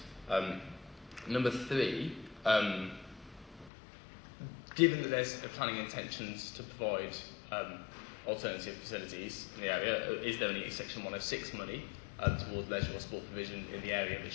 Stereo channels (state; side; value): drops out; right; at 3.7 s